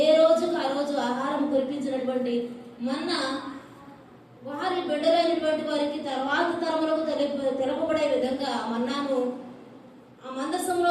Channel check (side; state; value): both; identical; correlation 1.00